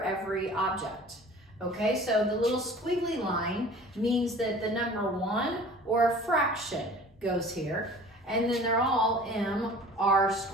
every object. Okay, so the little squiggly line means that the number 1 or a fraction goes here. And then they're all mr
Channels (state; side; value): normal; both; correlation 0.45